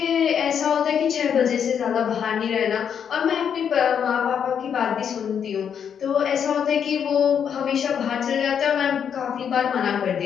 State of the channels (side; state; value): right; quieter; 7.9 dB